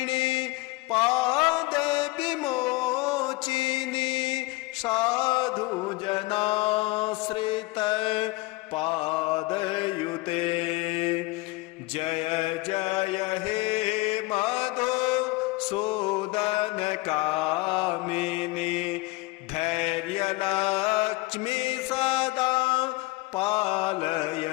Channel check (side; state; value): right; quieter; 21.9 dB